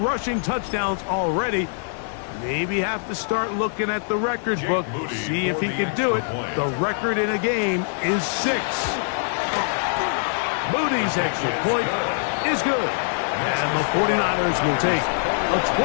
touchdowns already. Maybe have to start looking at the record book, see if he can do it. The record in a game is 6. Moody's extra point is good. And the 49ers will take a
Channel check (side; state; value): right; silent; digital silence